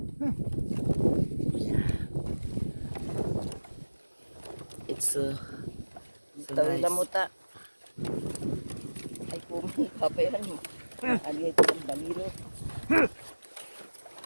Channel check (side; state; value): both; inverted; correlation -1.00